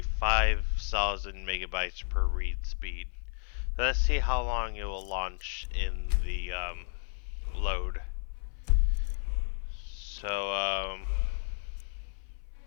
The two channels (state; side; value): silent; right; 56 dB below the other